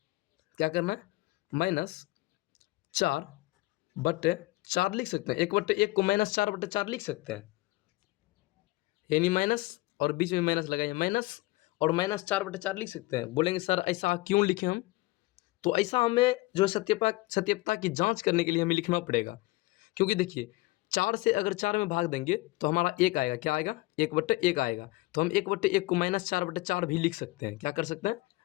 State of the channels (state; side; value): quieter; right; 20.9 dB